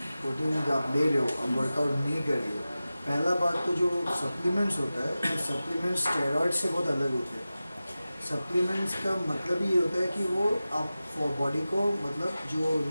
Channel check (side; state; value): both; inverted; correlation -0.95